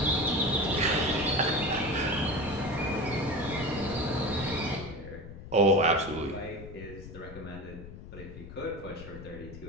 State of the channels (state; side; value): noise; left; rumble, 13 dB below the sound